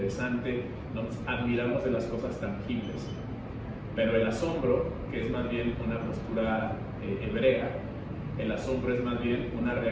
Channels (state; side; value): identical; both; correlation 1.00